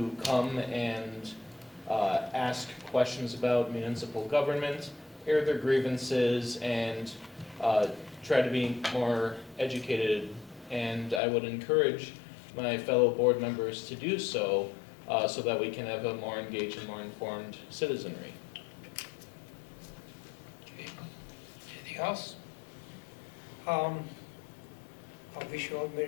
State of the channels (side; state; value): right; drops out; at 11.2 s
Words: come and ask questions about municipal government, air their grievances, and try to be more educated. And I would encourage my fellow board members to do so, so that we can have a more engaged and more informed citizenry. Okay. Anything else? I wish you all